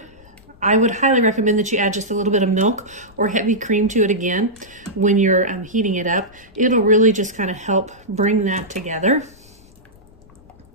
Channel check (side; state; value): left; noise; rumble, 27 dB below the sound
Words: I would highly recommend that you add just a little bit of milk or heavy cream to it again when you're heating it up. It'll really just kind of help bring that together,